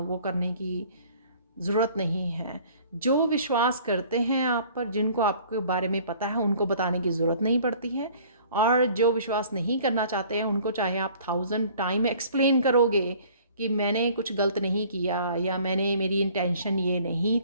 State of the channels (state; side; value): inverted; both; correlation -0.52